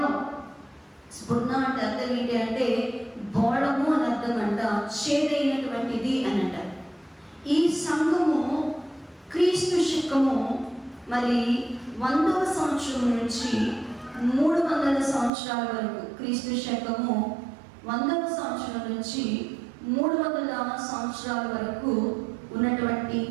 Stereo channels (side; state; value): left; drops out; at 15.3 s